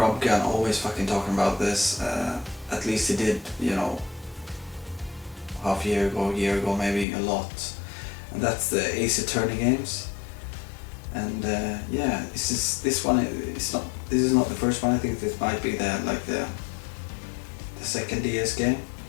always fucking talking about this. At least he did, you know, half a year ago maybe, a lot. And that's the Ace Attorney games. And yeah, this one is not. This is not the first one. I think this might be the second DS game.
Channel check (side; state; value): right; drops out; at 7.1 s